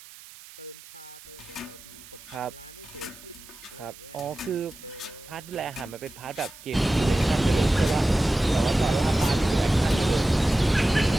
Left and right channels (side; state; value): right; noise; hiss, 19 dB below the sound